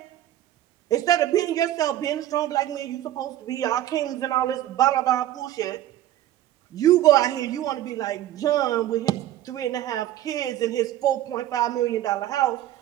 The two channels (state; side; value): quieter; left; 13.1 dB